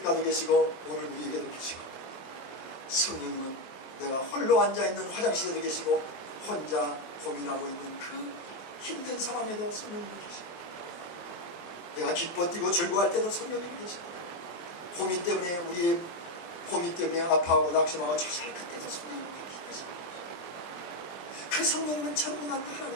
계시고 오늘 우리에게도 계시고 성령님은 내가 홀로 앉아있는 화장실에도 계시고 혼자 고민하고 있는 그 힘든 상황에도 성령님은 계시고 내가 기뻐 뛰고 즐거워할 때도 성령님이 계시고 고민 때문에 우리의 고민 때문에 아파하고 낙심하고 좌절 그때도 성령님은 같이 계시고 그 성령님은 전능한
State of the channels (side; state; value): right; late; 23 ms